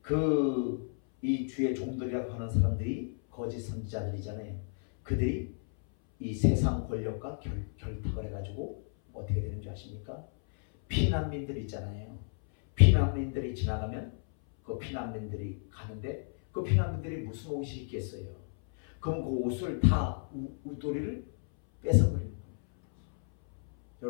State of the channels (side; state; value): right; silent; 57 dB below the other